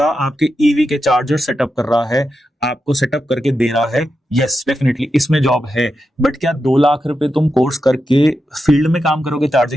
आपके ईवी के चार्जर सेटअप कर रहा है, आपको सेटअप करके दे रहा है, यस डेफिनेटली इसमें जॉब है। बट क्या 2 लाख रुपए तुम कोर्स करके फील्ड में काम करोगे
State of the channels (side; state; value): both; normal; correlation 0.88